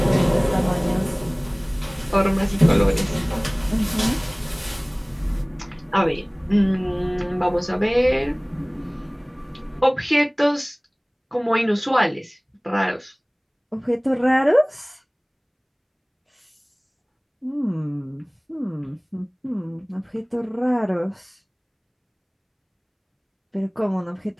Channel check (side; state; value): both; identical; correlation 1.00